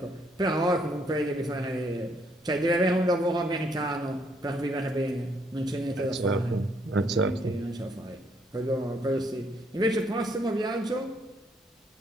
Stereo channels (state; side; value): normal; both; correlation 0.70